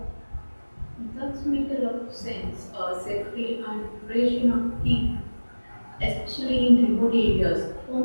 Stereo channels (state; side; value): inverted; both; correlation -1.00